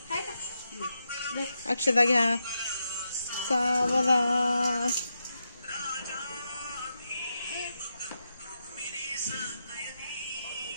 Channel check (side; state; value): both; inverted; correlation -0.85